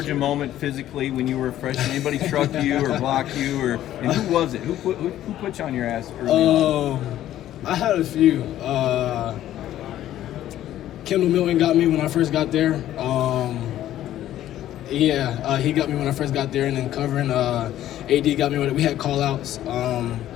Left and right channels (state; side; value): quieter; right; 12.7 dB